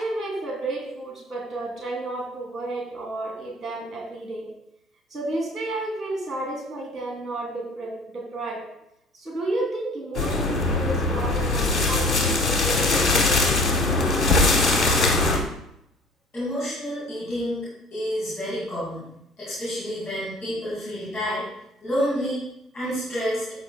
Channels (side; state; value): both; normal; correlation 0.47